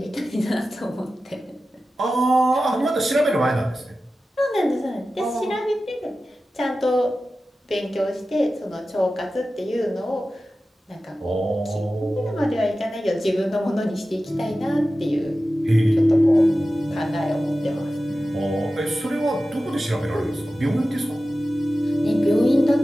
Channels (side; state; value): both; normal; correlation 0.94